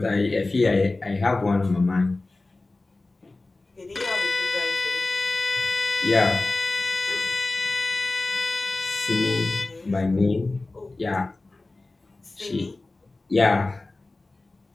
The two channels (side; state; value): right; quieter; 3.2 dB